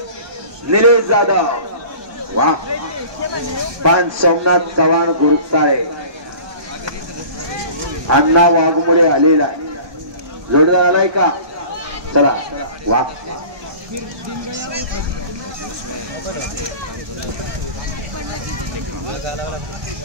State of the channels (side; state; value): left; late; 1.2 ms